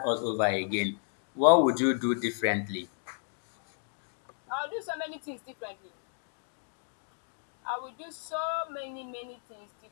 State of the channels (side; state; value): right; silent; digital silence